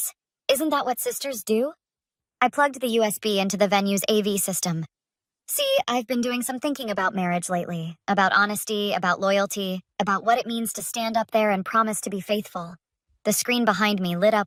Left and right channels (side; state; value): both; identical; correlation 1.00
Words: Isn't that what sisters do? I plugged the USB into the venue's AV system. See, I've been doing some thinking about marriage lately, about honesty, about loyalty, about what it means to stand up there and promise to be faithful. The screen behind me lit